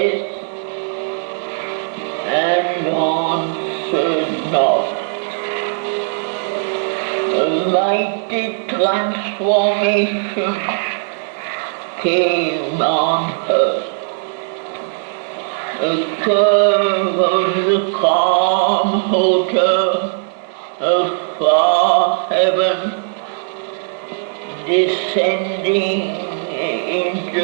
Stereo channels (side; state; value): left; silent; digital silence